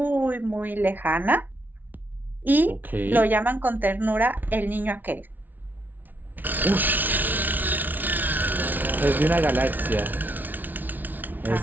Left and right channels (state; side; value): late; left; 0.084 ms